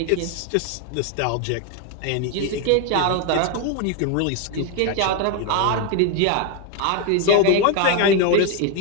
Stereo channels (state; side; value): different; both; correlation 0.01